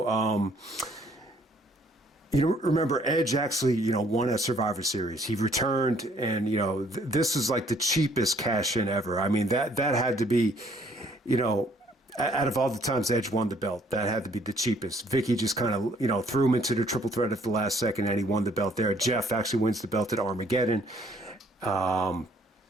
Remember Edge actually, won at Survivor Series. He returned and, this is like the cheapest cash in ever. I mean, that had to be, out of all the times Edge won the belt, that had to be the cheapest. Vicky just kind of, threw him into the triple threat at the last second, and he won the belt there. Jeff actually wins the belt at Armageddon.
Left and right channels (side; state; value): both; normal; correlation 0.62